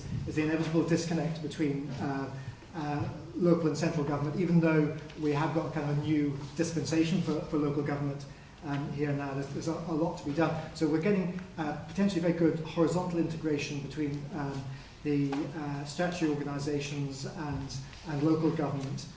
the inevitable disconnect between local and central government, even though we have got a kind of a new dispensation for local government here now. There's a lot to be done. So we're getting potentially very good horizontal integration between the statutory organisations and local government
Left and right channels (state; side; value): identical; both; correlation 1.00